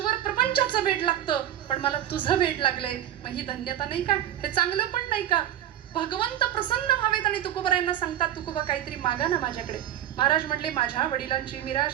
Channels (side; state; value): left; quieter; 11.6 dB